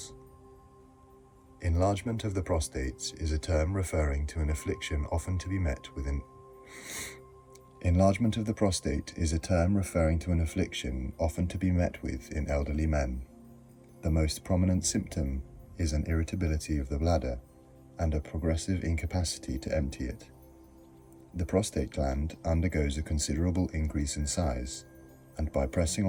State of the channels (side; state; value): both; identical; correlation 1.00